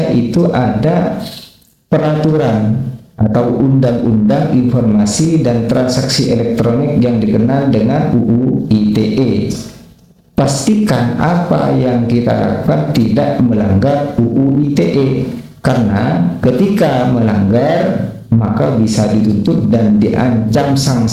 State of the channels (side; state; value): both; identical; correlation 1.00